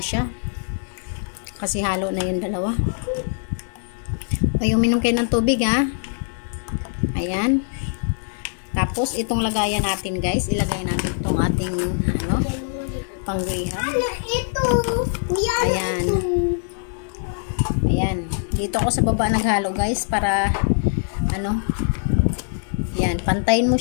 siya. Kasi halo na yung dalawa. Ay, uminom kayo ng tubig ha. Ayan. Tapos itong lagayan natin guys. Ilagay natin itong ating pang-reham. Ito. Ayan. Ayan. Dito ako sa baba naghalo guys para yan, pantayin mo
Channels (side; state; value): right; silent; digital silence